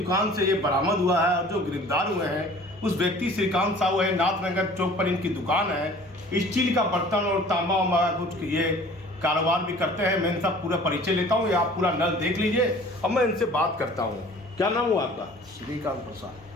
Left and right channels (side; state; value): both; normal; correlation 0.48